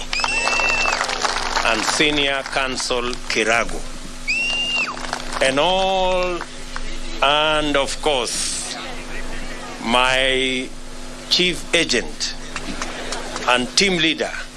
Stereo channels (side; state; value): both; identical; correlation 1.00